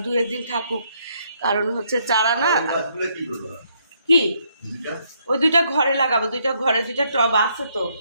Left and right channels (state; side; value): inverted; both; correlation -0.72